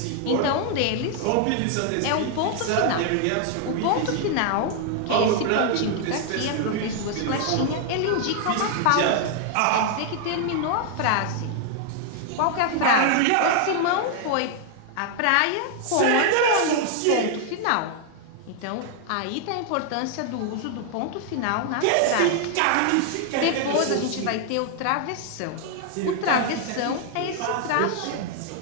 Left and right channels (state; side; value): different; both; correlation 0.00